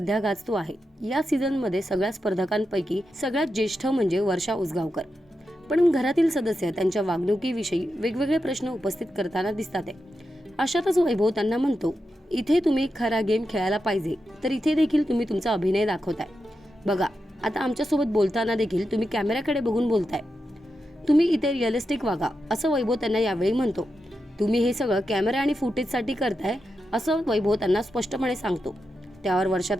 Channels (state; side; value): normal; both; correlation 0.88